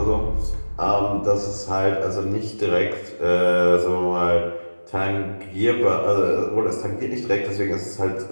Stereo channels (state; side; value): inverted; both; correlation -1.00